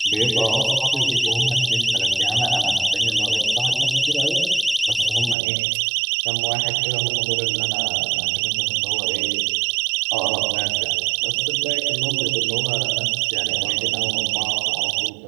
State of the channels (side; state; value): left; drops out; at 5.4 s